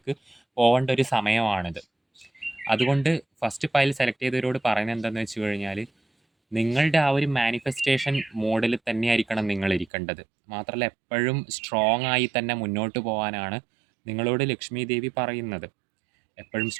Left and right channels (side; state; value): left; drops out; at 9.9 s